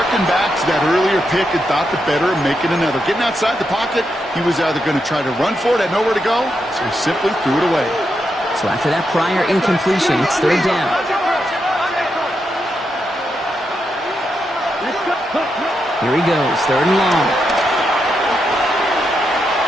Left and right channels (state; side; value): normal; both; correlation 0.84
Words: back to that earlier pick and thought the better of making another. Getting outside the pocket, he was either going to try to run for it, had nowhere to go, so he simply threw it away. So after that prior incompletion, it's 3rd down. Here he goes, 3rd and long.